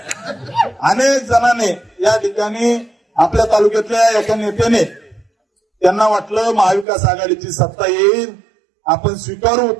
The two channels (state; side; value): drops out; left; at 6.9 s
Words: अनेक जणांनी या ठिकाणी आपल्या तालुक्यातल्या एका नेत्याने त्यांना वाटलं महाविकास आघाडीची सत्ता येईल, आपण स्वीकारू